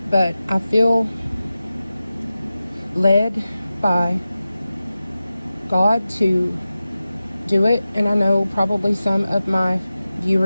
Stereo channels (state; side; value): inverted; both; correlation -0.94